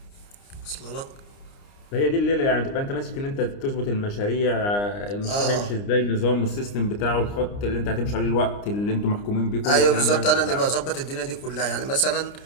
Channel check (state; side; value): late; right; 29 ms